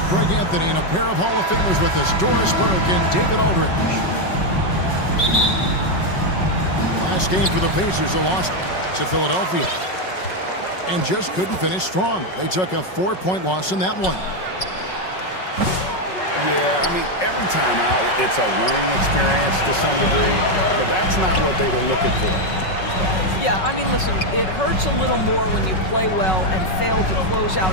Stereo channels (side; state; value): right; late; 5.4 ms